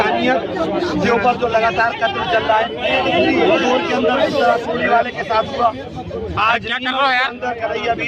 के ऊपर जो लगातार कत्ल चल रहा है, इंदौर के अंदर सोने वाले के साथ हुआ, आज अंदर करैया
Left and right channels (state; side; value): identical; both; correlation 1.00